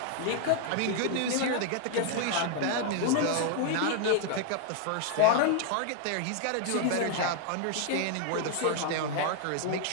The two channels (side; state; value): both; different; correlation 0.00